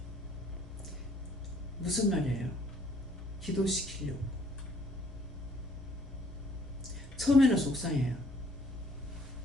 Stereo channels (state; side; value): normal; both; correlation 0.61